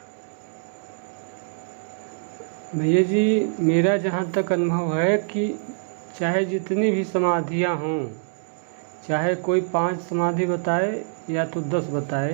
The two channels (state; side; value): silent; left; digital silence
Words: भैया जी। मेरा जहाँ तक अनुभव है कि चाहे जितनी भी समाधियाँ हों, चाहे कोई 5 समाधि बताए या तो 10 बताए,